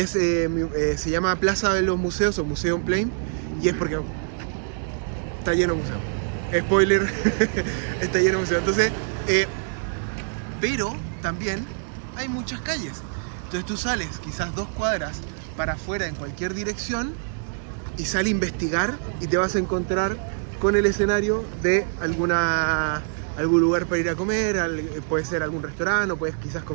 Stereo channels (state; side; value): silent; left; digital silence